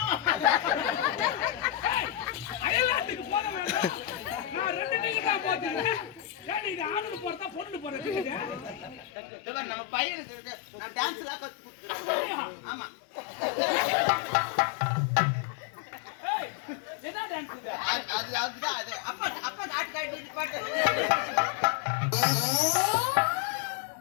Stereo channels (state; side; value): drops out; right; at 9.1 s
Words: அயலாத்துக்கு போற வேண்டாம். நான் ரெண்டு டிக்கெட் தான் போட்டுறேன். ஏன் இது ஆணுக்கு போறதா பொண்ணுக்கு போற டிக்கெட்? நம்ம பையனுக்கு இருக்கு. நான் டான்ஸ்ல கத்து கொடுத்துறேன். ஆமா ஏய் என்ன டான்ஸ் இது? அதுதான் அது அப்பா அப்பா காட்டு காட்டி பாட்டு